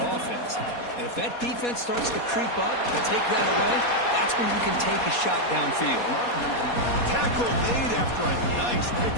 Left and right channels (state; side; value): late; right; 4.2 ms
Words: offense. And if that defense starts to creep up and take that away, that's when you can take a shot downfield. Tackle made after a nice